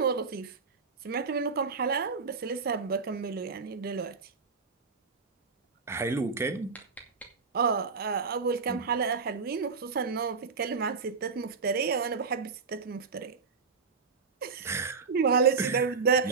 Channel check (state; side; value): quieter; left; 5.1 dB